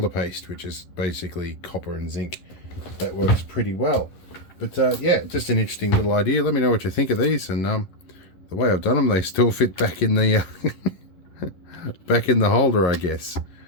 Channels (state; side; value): late; right; 11 ms